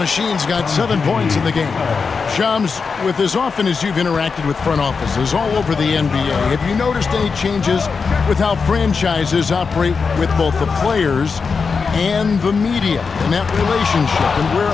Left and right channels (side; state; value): right; quieter; 5.2 dB